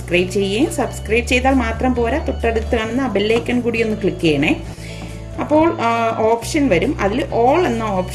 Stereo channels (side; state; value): both; identical; correlation 1.00